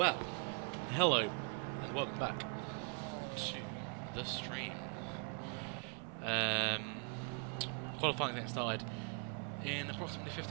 hello and welcome back to the stream. Qualifying getting started in approximately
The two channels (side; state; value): left; quieter; 39.9 dB